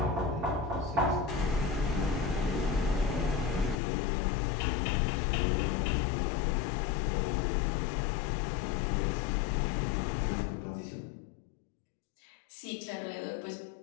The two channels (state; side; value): drops out; right; at 3.8 s